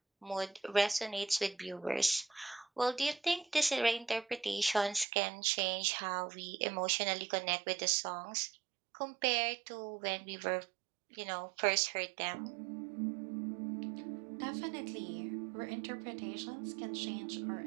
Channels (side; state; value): left; drops out; at 5.1 s